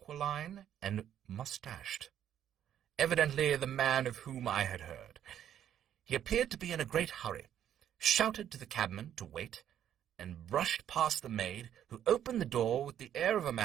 and mustached. Evidently the man of whom I had heard. He appeared to be in a great hurry, shouted to the cabman to wait, and brushed past the maid, who opened the door with the air of a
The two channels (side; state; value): left; quieter; 10.3 dB